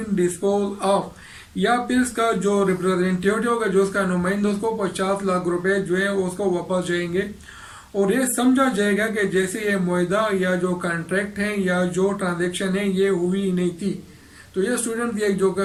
disposed of, या फिर इसका जो रिप्रेजेंटेटिव होगा, जो उसका नुमाइंदा, उसको 50 लाख रुपए जो है उसको वापस जाएंगे। और ये समझा जाएगा कि जैसे ये मुआहदा या जो कॉन्ट्रैक्ट है या जो ट्रांजेक्शन है ये हुई ही नहीं थी। तो ये स्टूडेंट ये जो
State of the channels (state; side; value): identical; both; correlation 1.00